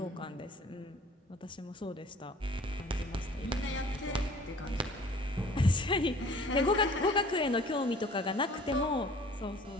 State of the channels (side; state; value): both; normal; correlation 0.50